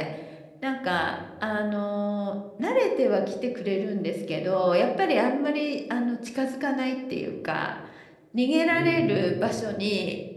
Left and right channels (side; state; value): both; identical; correlation 1.00